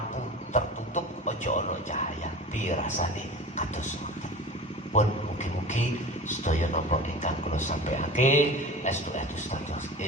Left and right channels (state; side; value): normal; both; correlation 0.35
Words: tertutup, aja ana cahaya. Piye rasane kados ngoten. pun mugi-mugi sedaya napa ingkang kula sampaiake estu-estu status